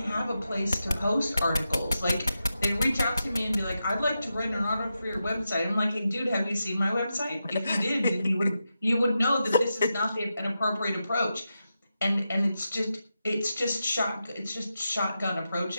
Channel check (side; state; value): both; inverted; correlation -0.89